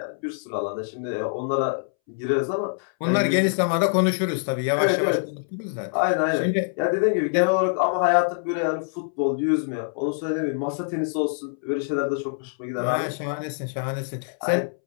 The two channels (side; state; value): right; silent; 62 dB below the other